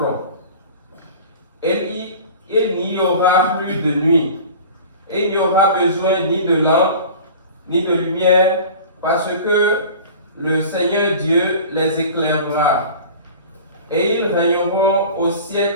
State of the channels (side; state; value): both; inverted; correlation -0.40